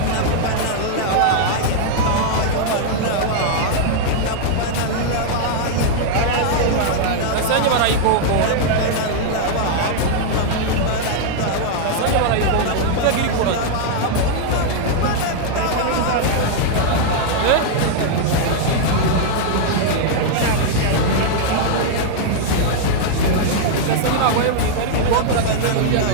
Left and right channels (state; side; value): different; both; correlation -0.01